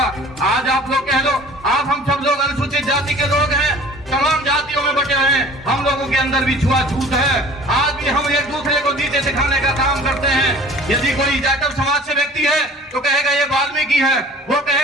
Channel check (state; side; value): normal; both; correlation 0.47